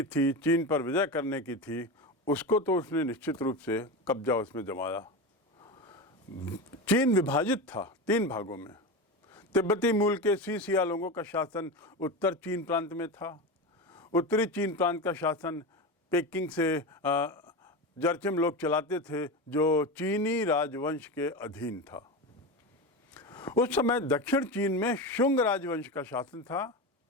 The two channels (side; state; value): both; normal; correlation 0.21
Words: थी, चीन पर विजय करने की थी, उसको तो उसने निश्चित रूप से कब्जा उसमें जमाया। चीन विभाजित था 3 भागों में। तिब्बती मूल के सीसिया लोगों का शासन उत्तर चीन प्रांत में था। उत्तरी चीन प्रांत का शासन पेकिंग से जरचिम लोग चलाते थे, जो चीनी राजवंश के अधीन था। उस समय दक्षिण चीन में शुंग राजवंश का शासन था